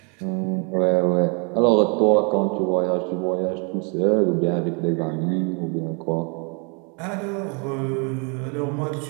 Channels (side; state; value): left; quieter; 36.4 dB